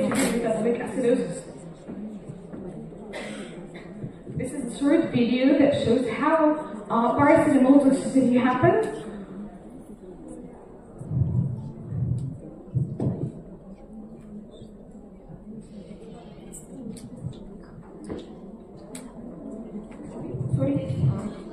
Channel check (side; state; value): both; identical; correlation 1.00